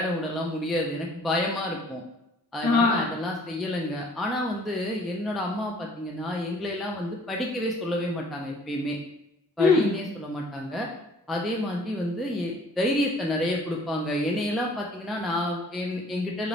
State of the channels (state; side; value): normal; both; correlation 0.55